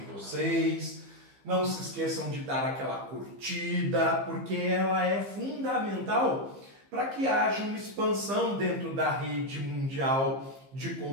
vocês. Não se esqueçam de dar aquela curtida, porque ela é fundamental para que haja uma expansão dentro da rede mundial de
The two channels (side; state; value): left; late; 15 ms